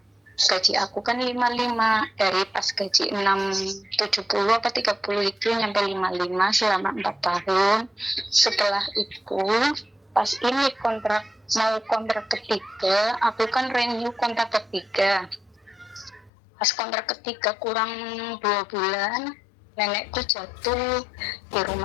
gaji aku kan 55 dari pas gaji 670 apa 30 itu nyampe 55 selama 4 tahun. Setelah itu pas ini mau kontrak ketiga, aku kan renew kontrak ketiga. Pas kontrak ketiga kurang 2 bulan, nenekku jatuh di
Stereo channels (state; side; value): drops out; right; at 16.3 s